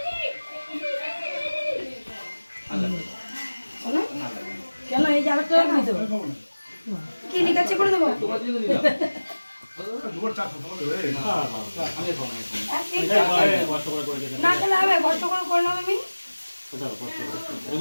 কেন এই যে আরেকটা রাখবি তো? কি লিখাচ্ছে করে দেবো? না খেলে হবে, কষ্ট করে করলাম আমি।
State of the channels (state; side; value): inverted; both; correlation -1.00